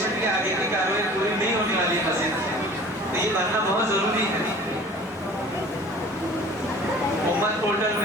کی آگے کی کارروائی پوری نہیں ہونے والی ہے مسجد. تو یہ بننا بہت ضروری ہے. امت پورٹل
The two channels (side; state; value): both; normal; correlation 0.45